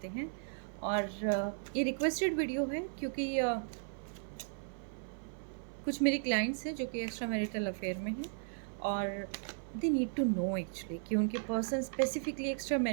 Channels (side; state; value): left; silent; 54 dB below the other